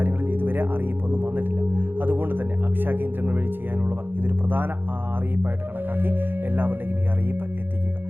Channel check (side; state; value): left; late; 0.098 ms